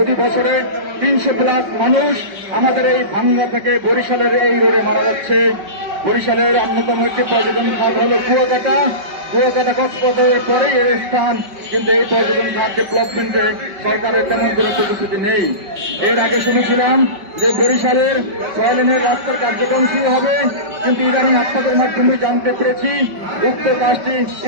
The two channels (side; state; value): left; late; 5.2 ms